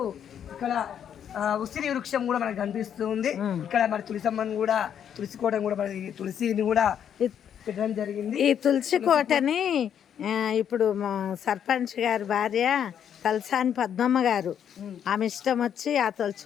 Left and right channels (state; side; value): quieter; right; 8.9 dB